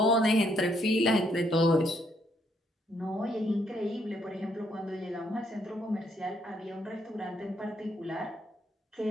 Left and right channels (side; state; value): both; normal; correlation 0.72